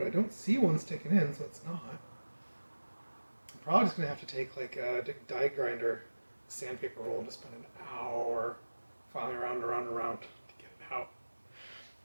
I don't see one sticking in, so it's not. I'm probably just going to have to take like a die grinder, sandpaper roll, and just spend an hour filing around and around and around to get it out.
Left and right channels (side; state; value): both; inverted; correlation -1.00